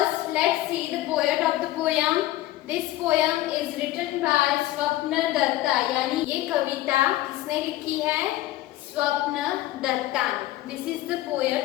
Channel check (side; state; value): right; quieter; 15.7 dB